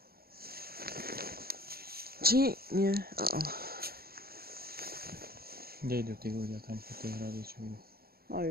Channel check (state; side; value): late; left; 0.44 ms